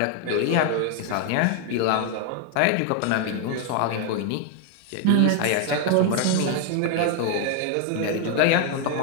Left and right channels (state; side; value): different; both; correlation 0.01